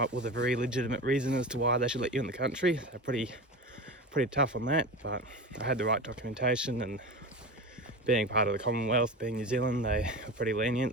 up with a very legitimate reason as to why they should let you in the country. They're pretty tough on that, but I had the right documentation, and being part of the Commonwealth, being New Zealand, they were pretty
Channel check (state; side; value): normal; both; correlation 0.28